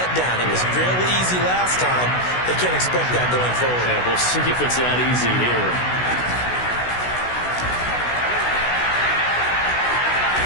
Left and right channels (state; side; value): late; right; 16 ms